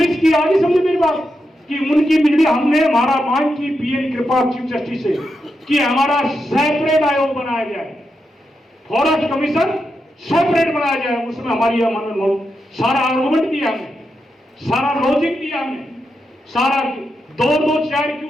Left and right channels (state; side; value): normal; both; correlation 0.86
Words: की आगे समझे मेरी बात कि उनकी बिजली हमने हमारा मांग की पीएन कृपा चीफ जस्टिस से कि हमारा सेपरेट आयोग बनाया जाए, फॉरेस्ट कमीशन सेपरेट बनाया जाए। उसमें हमारी सारा आर्गुमेंट दिया हमने, सारा लॉजिक दिया हमने, सारा 2-2 चेयर क्यों